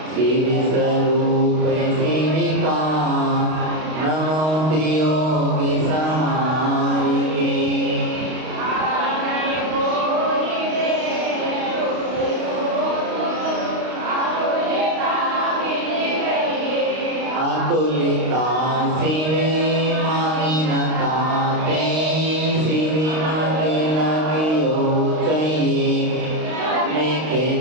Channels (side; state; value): left; late; 32 ms